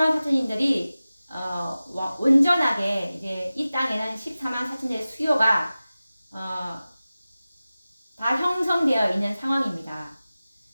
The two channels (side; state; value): both; inverted; correlation -0.96